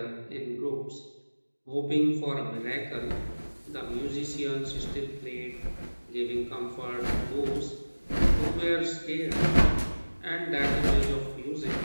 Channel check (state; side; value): inverted; both; correlation -1.00